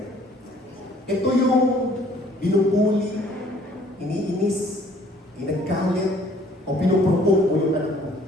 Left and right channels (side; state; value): both; normal; correlation 0.58